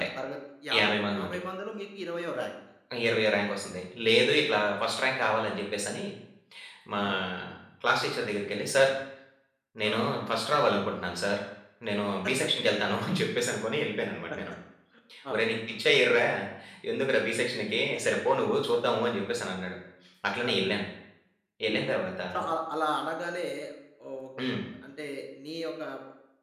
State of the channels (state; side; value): identical; both; correlation 1.00